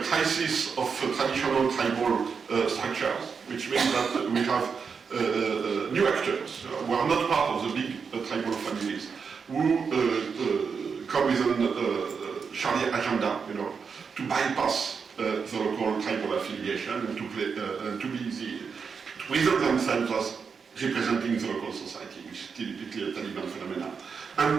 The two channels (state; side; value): quieter; left; 5.8 dB